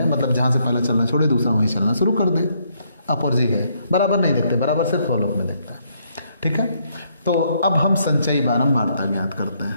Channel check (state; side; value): inverted; both; correlation -0.72